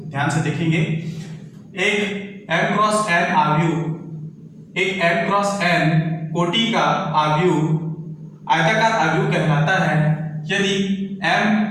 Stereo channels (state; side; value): identical; both; correlation 1.00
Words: ध्यान से देखेंगे। एक m क्रॉस n आव्यूह, एक m क्रॉस n कोटि का आव्यूह आयताकार आव्यूह कहलाता है यदि m